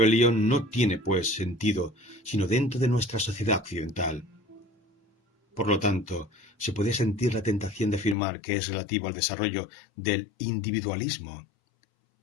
no tiene, pues, sentido sino dentro de nuestra sociedad occidental. Por lo tanto, se puede sentir la tentación de afirmar que es relativo al desarrollo del individualismo.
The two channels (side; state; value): right; drops out; at 8.2 s